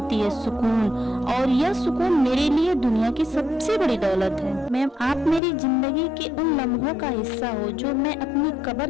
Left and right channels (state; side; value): drops out; right; at 5.4 s